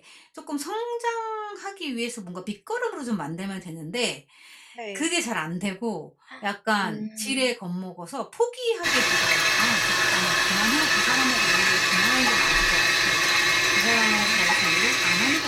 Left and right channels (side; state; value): both; identical; correlation 1.00